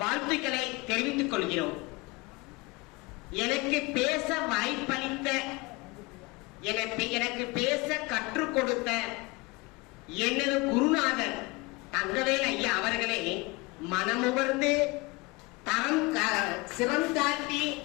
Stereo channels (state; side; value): quieter; right; 24.6 dB